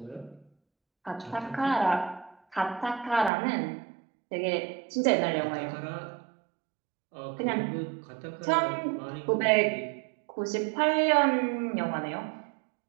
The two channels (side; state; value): left; drops out; at 3.3 s